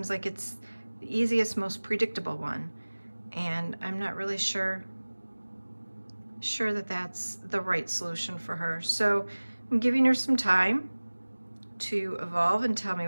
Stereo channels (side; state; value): both; inverted; correlation -1.00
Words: like it's the easiest, most predictable one, and I'm not really sure that that's the right solution for her. So I'm giving her some time to evolve and tell me